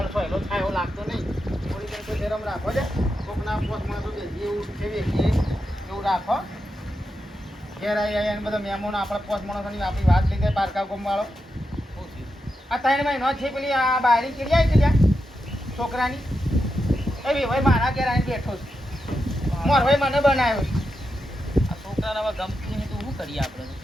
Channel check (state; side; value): normal; both; correlation 0.87